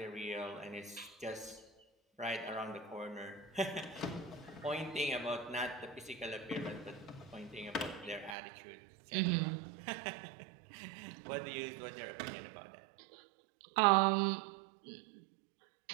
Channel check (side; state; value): left; drops out; at 8.3 s